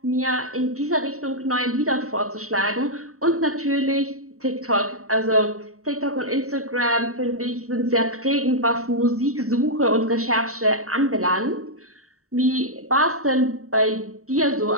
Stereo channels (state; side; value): late; left; 0.64 ms